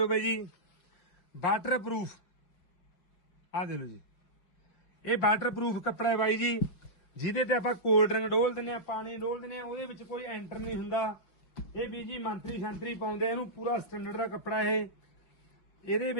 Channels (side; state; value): right; late; 5.8 ms